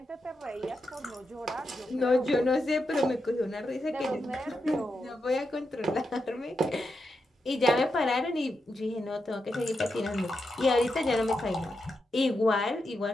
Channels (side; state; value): both; normal; correlation 0.86